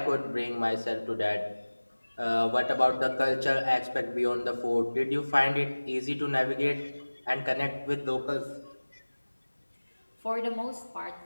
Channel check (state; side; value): inverted; both; correlation -1.00